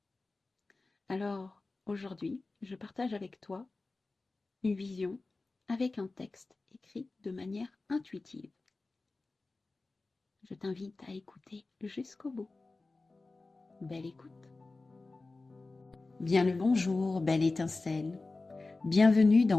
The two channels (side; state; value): right; quieter; 3.5 dB